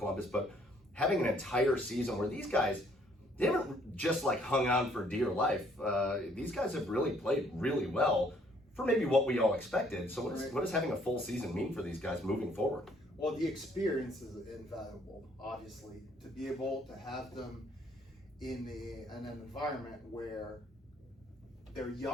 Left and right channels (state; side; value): normal; both; correlation 0.64